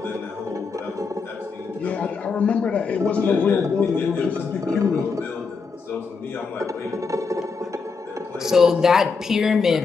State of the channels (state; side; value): quieter; right; 4.9 dB